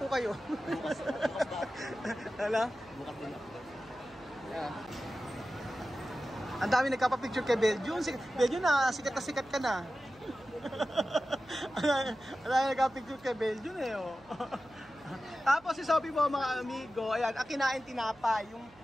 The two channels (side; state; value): right; noise; hum, 28 dB below the sound